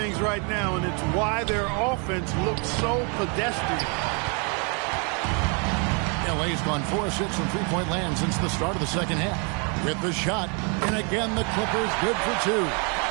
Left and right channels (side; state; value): left; quieter; 35.4 dB